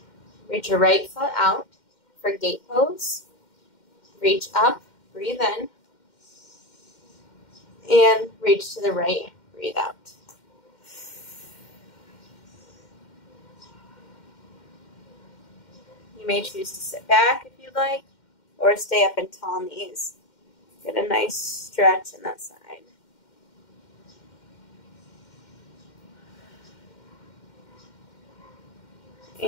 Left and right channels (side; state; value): right; late; 2.1 ms